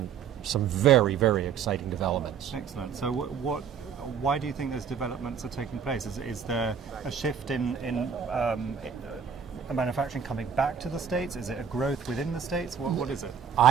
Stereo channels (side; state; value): left; quieter; 7.2 dB